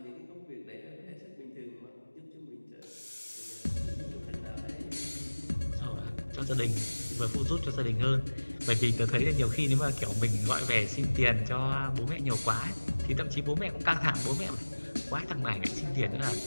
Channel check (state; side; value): inverted; both; correlation -1.00